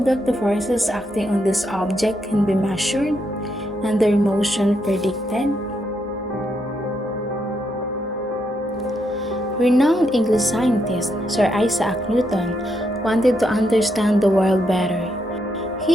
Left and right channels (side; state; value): both; normal; correlation 0.79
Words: that the forces acting on this object can be measured and their motion predicted? Renowned English scientist Sir Isaac Newton wanted to understand the world better.